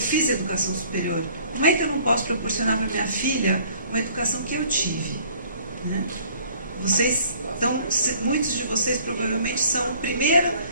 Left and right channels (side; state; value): both; inverted; correlation -0.55